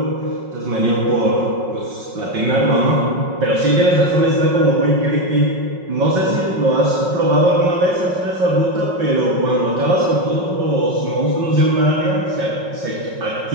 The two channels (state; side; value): late; left; 5.4 ms